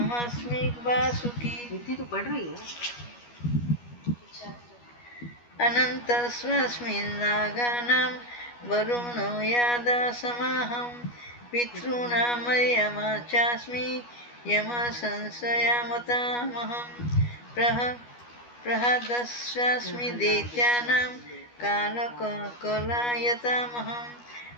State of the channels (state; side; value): late; right; 12 ms